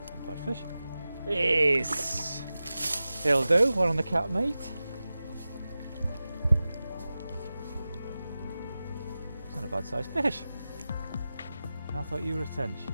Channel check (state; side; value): inverted; both; correlation -0.95